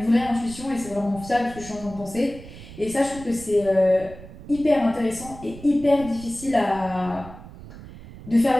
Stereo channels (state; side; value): noise; right; rumble, 16 dB below the sound